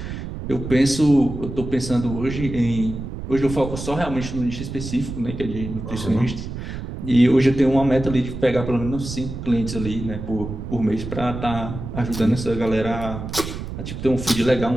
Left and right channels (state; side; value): noise; right; rumble, 8 dB below the sound